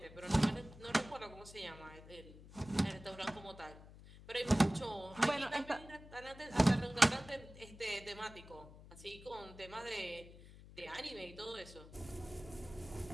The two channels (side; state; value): left; noise; hum, 18 dB below the sound